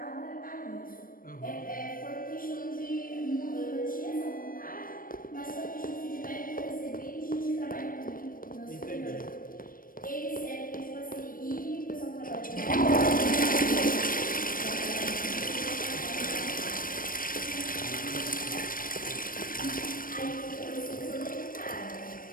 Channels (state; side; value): late; right; 0.41 ms